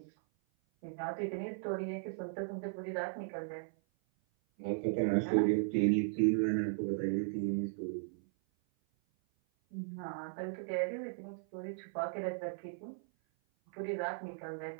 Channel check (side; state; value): left; silent; 53 dB below the other